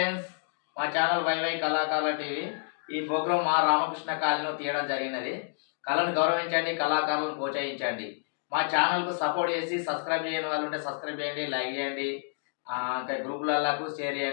మా channel YY కళాకారుల TV. ఈ ప్రోగ్రాం మా రామకృష్ణ కాలనీలో తీయడం జరిగినది. కళను గౌరవించండి, కళాకారులను ప్రోత్సహించండి. మా ఛానల్కు సపోర్ట్ చేసి సబ్స్క్రైబ్ చేయని వాళ్ళు ఉంటే సబ్స్క్రైబ్ చేయండి, లైక్ చేయండి, ఇంకా గ్రూపులకు షేర్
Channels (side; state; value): right; silent; digital silence